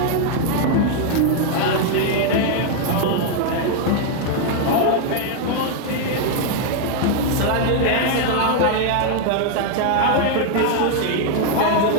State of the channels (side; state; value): both; different; correlation 0.00